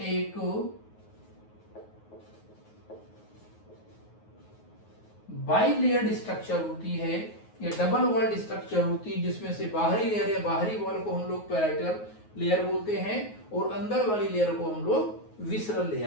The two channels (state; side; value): late; right; 9.4 ms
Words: बाई लेयर्ड स्ट्रक्चर होती है या डबल वॉल्ड स्ट्रक्चर होती है जिसमें से बाहरी लेयर या बाहरी वॉल को हम लोग पैराइटल लेयर बोलते हैं और अंदर वाली लेयर को हम लोग विसरल